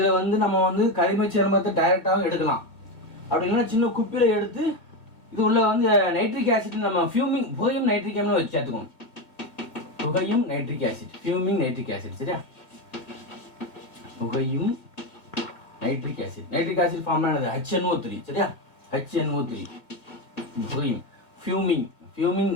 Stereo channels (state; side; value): late; right; 2.0 ms